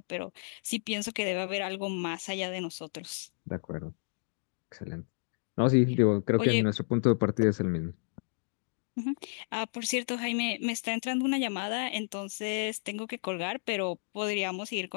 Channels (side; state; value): right; silent; digital silence